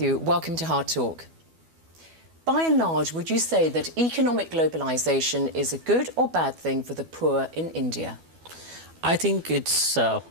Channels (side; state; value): left; late; 12 ms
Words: welcome to Hard Talk. By and large, would you say that economic globalisation is a good or bad thing for the poor in India? I think it's